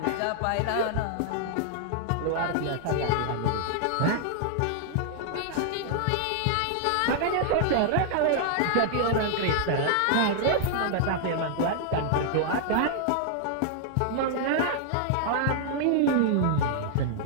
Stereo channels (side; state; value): both; different; correlation -0.01